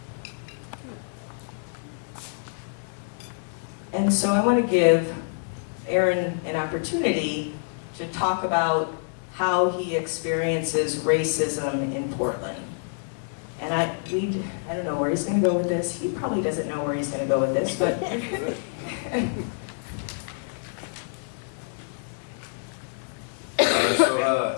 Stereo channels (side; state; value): right; silent; 60 dB below the other